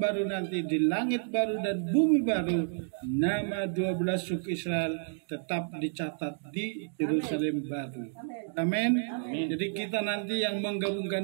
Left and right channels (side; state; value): left; silent; digital silence